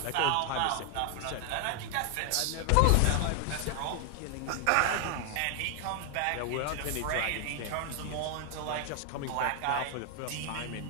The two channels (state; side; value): different; both; correlation 0.00